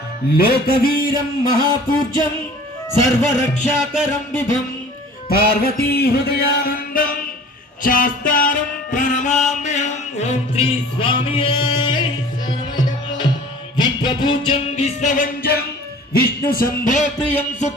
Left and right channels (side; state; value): both; normal; correlation 0.46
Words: లోకవీరం మహాపూజ్యం సర్వరక్షాకరం విభం పార్వతీ హృదయానందం శాస్తారం ప్రణమామ్యహం ఓం శ్రీ స్వామియే విశ్వపూజ్యం విశ్వవంజం విష్ణు శంభో ప్రియం